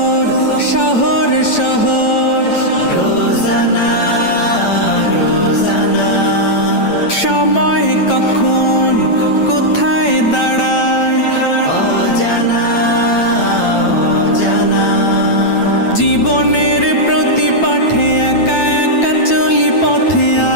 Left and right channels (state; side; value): late; right; 9.0 ms